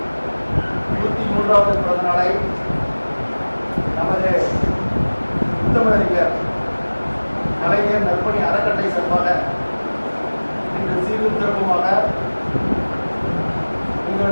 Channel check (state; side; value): inverted; both; correlation -1.00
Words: 103வது பிறந்த நாளை நமது முத்தமிழறிஞர் கலைஞர் நற்பணி அறக்கட்டளை சார்பாக இன்று சீரும் சிறப்புமாக